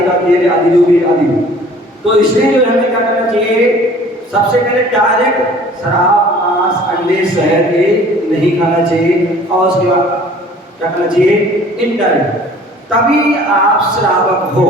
तेल आदि जो भी आदि। तो इसलिए जो हमें क्या करना चाहिए? सबसे पहले डायरेक्ट शराब, मांस, अंडे, शहद ये नहीं खाना चाहिए। और उसके बाद क्या करना चाहिए? इनडायरेक्ट, तभी आप श्रावक हो।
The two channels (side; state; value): both; normal; correlation 0.50